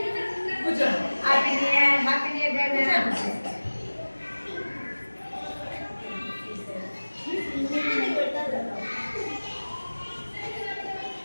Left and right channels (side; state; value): both; inverted; correlation -1.00